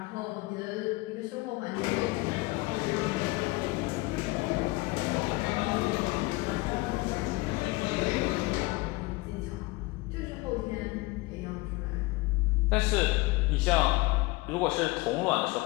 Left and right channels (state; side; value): quieter; right; 22.3 dB